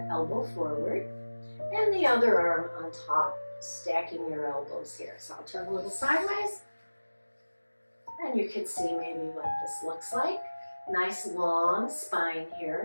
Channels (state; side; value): inverted; both; correlation -1.00